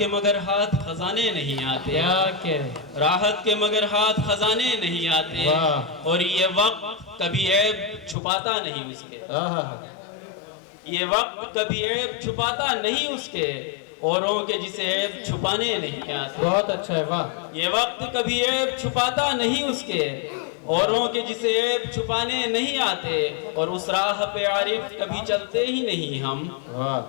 مگر ہاتھ خزانے نہیں آتے، کیا کہہ، راحت کے مگر ہاتھ خزانے نہیں آتے، واہ، اور یہ وقت کبھی عیب چھپاتا نہیں اس کے، آہا، یہ وقت کبھی عیب چھپاتا نہیں اس کے، اوروں کے جسے عیب چھپانے نہیں آتے، بہت اچھا ہے، واہ، یہ وقت کبھی عیب چھپاتا نہیں اس کے، اوروں کے جسے عیب چھپانے نہیں آتے، اور اس راہ پہ عارف کبھی چلتے ہی نہیں ہم،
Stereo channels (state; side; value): drops out; right; at 8.2 s